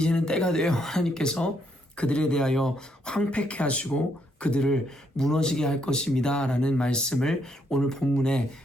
때가 되어 하나님께서 그들에 대하여 황폐케 하시고 그들을 무너지게 할 것입니다 라는 말씀을 오늘 본문에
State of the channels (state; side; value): normal; both; correlation 0.74